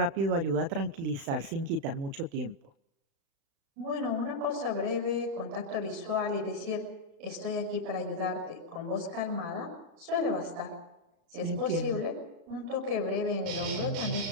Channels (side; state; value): left; late; 36 ms